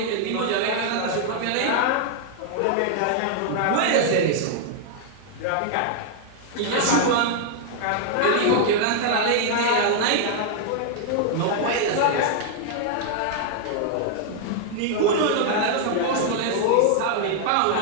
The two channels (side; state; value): both; different; correlation -0.01